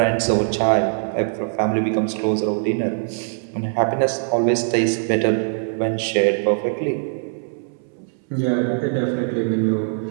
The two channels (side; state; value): left; silent; 65 dB below the other